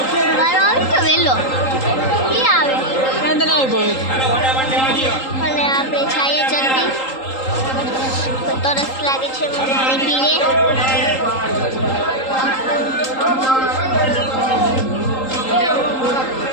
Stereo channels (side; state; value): right; late; 3.8 ms